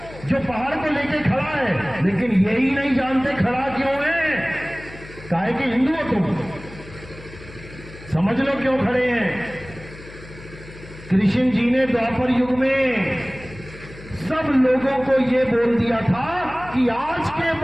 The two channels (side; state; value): left; noise; hum, 17 dB below the sound